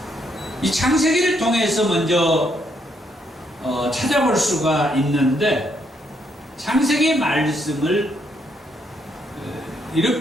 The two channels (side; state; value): both; normal; correlation 0.74